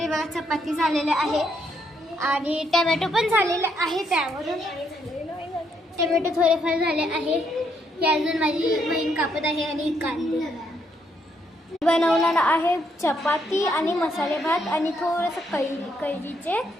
बघा चपाती झालेले आहे आणि टमॅटो पण झालेले आहे. त्यावरून टमॅटो थोडेफार झाले आहे. हे अजून माझी बहीण कापत आहे आणि कांदे बनवणार आहे. चपाती आणि मसाले भात आणि थोडंसं कैरीचे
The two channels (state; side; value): normal; both; correlation 0.74